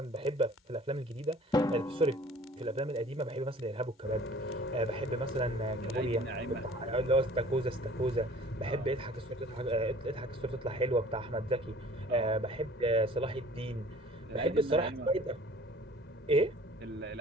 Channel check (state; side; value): normal; both; correlation 0.50